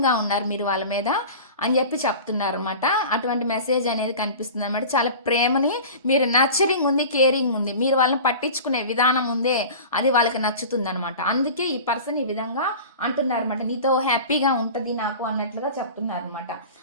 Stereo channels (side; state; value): both; inverted; correlation -0.36